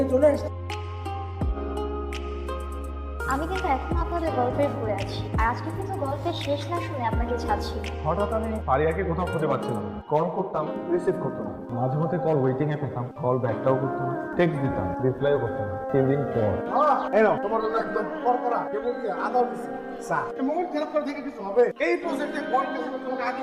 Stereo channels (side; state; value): both; identical; correlation 1.00